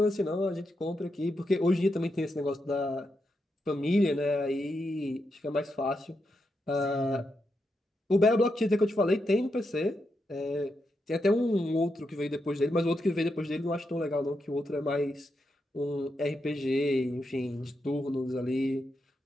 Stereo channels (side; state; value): both; normal; correlation 0.84